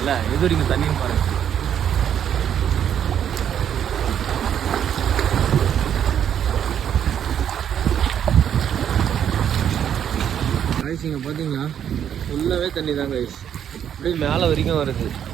எது வரைக்கும் தண்ணியும் பாருங்கள். காய்ஸ் இங்கே பார்த்தீங்களா ஃபுல்லாகவே தண்ணி தான் காய்ஸ், அப்படியே மேலே வரைக்கும் வருது.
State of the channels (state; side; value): quieter; left; 9.2 dB